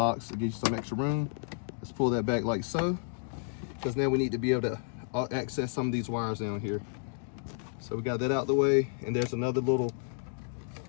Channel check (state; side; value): silent; right; digital silence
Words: to give you some extra room. Let's pull that back like so, because now we need to be able to access some of these wires down here. So we got that out the way, and there's another little